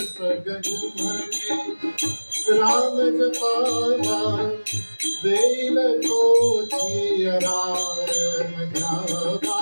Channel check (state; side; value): inverted; both; correlation -1.00